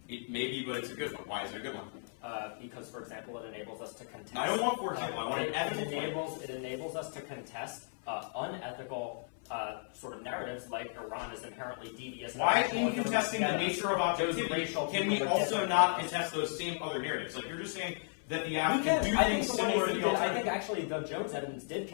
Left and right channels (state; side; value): silent; right; 55 dB below the other